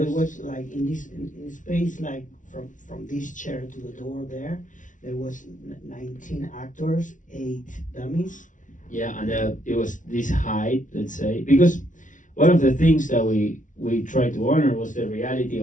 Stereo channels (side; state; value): right; late; 0.37 ms